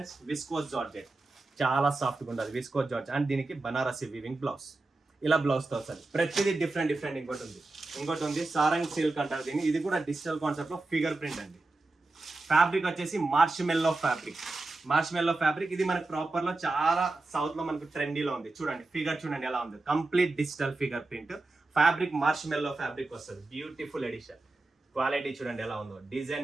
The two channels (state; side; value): quieter; left; 3.2 dB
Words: విస్కోస్ జార్జెట్ చాలా సాఫ్ట్గా ఉంటుంది. విస్కోస్ జార్జెట్ అండ్ దీనికి బనారసి వీవింగ్ బ్లౌజ్, ఇలా బ్లౌజ్తో వస్తుంది. ప్రతిదీ డిఫరెంట్ డిఫరెంట్. ఇంకోటి ఉంది సారంగ్ సిల్క్ అంటారు దీన్ని. ఇది కూడా డిజిటల్ కాన్సెప్ట్ లో ఫిగర్ ప్రింట్ అండి. ఫ్యాబ్రిక్ వచ్చేసి మార్ష్మెల్లో ఫ్యాబ్రిక్. ఇది మనకి ప్రాపర్ లో చాలా సౌత్ లో మనకు ట్రెండీలో ఉంది. చూడండి ఫిగర్ చూడండి ఎలా ఉంది, complete digital figure print. Fabric marshmallow fabric వస్తుంది. Beautiful edition. క్వాలిటీ చూడండి ఎలా ఉందో,